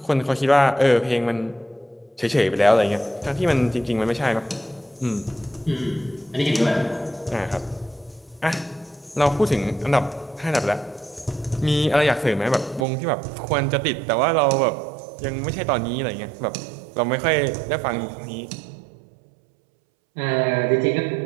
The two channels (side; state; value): left; drops out; at 12.9 s